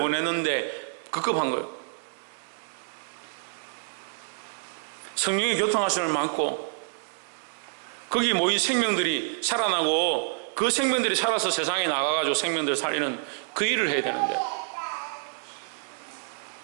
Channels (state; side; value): silent; left; 58 dB below the other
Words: 급급한 거예요. 성령의 교통하심을 많고 거기 모인 생명들이 살아나고 그 생명들이 살아서 세상에 나가가지고 생명들을 살리는 그 일을 해야 되는데